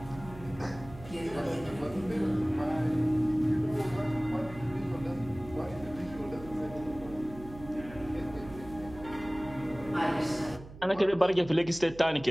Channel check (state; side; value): noise; right; hum, 16 dB below the sound